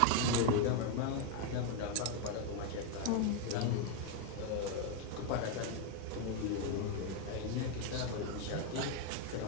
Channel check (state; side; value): different; both; correlation 0.01